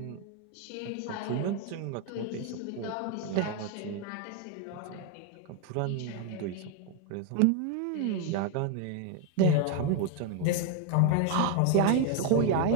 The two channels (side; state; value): both; different; correlation 0.01